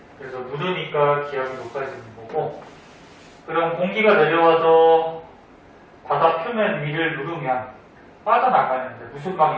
그래서 누르니까 기압이 높아지는 거고. 그럼 공기가 내려와서 바다 표면 위를 누르면 빠져나가는데 무슨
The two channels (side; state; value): both; identical; correlation 1.00